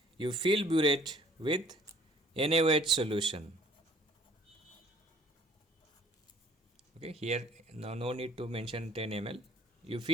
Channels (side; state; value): both; normal; correlation 0.56